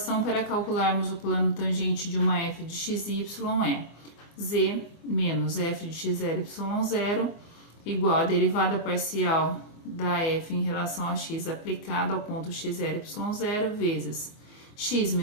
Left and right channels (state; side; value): late; right; 24 ms